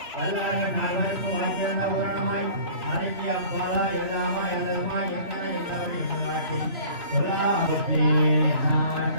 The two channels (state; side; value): late; left; 3.0 ms